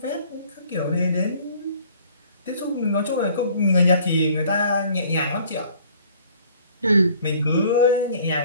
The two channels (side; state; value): both; inverted; correlation -0.55